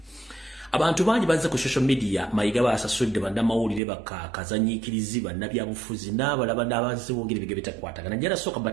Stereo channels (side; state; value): left; drops out; at 3.8 s